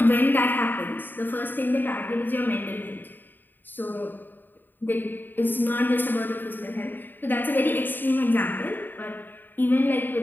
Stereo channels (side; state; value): right; late; 0.092 ms